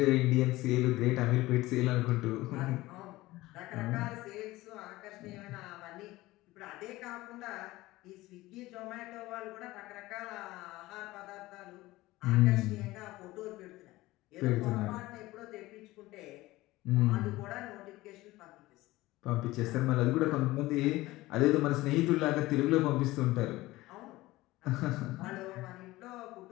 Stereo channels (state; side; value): quieter; right; 18.5 dB